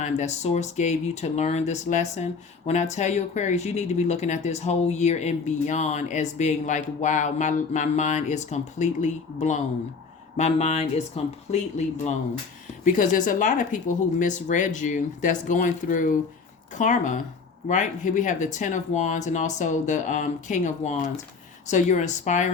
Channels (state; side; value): quieter; right; 5.0 dB